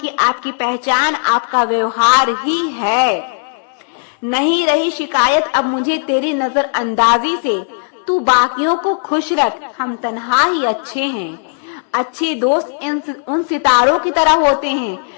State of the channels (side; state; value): right; silent; 68 dB below the other